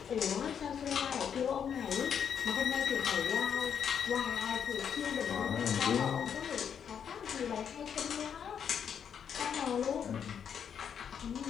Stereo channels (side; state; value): right; quieter; 7.9 dB